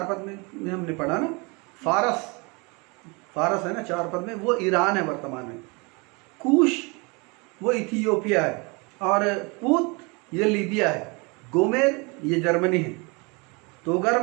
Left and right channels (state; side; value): quieter; left; 29.0 dB